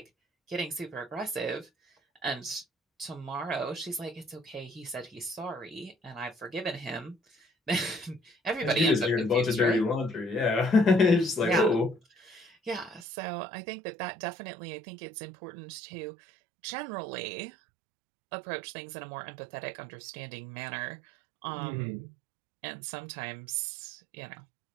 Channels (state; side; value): drops out; left; at 13.1 s